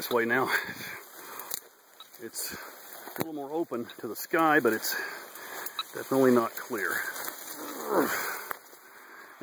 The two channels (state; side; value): identical; both; correlation 1.00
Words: way now. It's a little more open to the sky, but it's definitely not clear